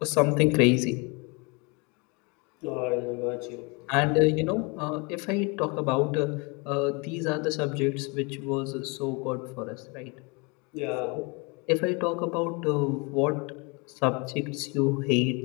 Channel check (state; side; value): quieter; right; 30.2 dB